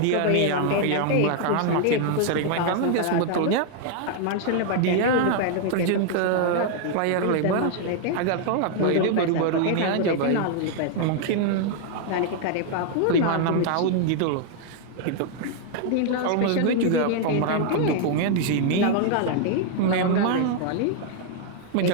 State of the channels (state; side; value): different; both; correlation 0.00